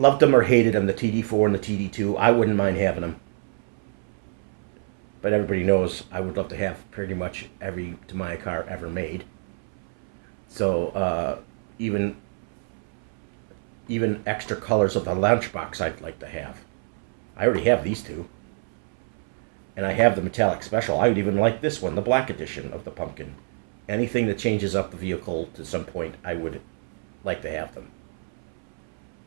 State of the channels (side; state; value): left; silent; 61 dB below the other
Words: them or hated them, the TD4 and the TD2. I wouldn't mind having them. but everybody knows I would love to have pretty much every Tamiya car ever made. So even extra colors of the lunchbox I'd like to have. I already have these two. And I have the metallic special. I would even like this one, the black edition of the pumpkin. Anything that changes up the vehicle to some point, I would like to have them.